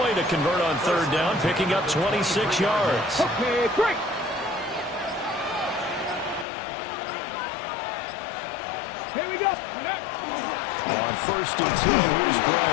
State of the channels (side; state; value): right; drops out; at 6.5 s